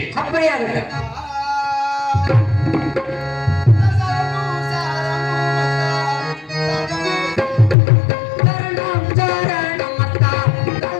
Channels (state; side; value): drops out; right; at 7.8 s